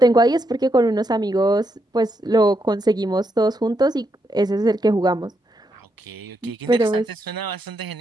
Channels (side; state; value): both; normal; correlation 0.80